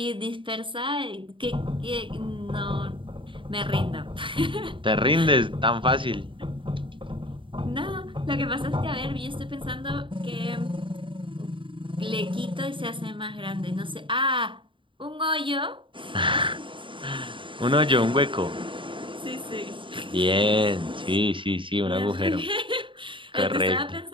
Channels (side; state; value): left; late; 0.24 ms